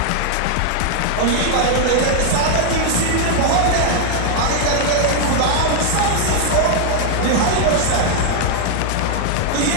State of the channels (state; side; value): different; both; correlation 0.00